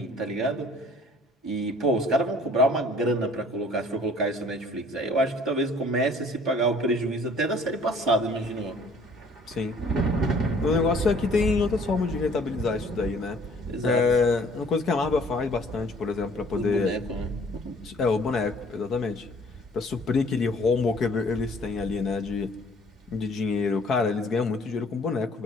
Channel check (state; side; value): normal; both; correlation 0.55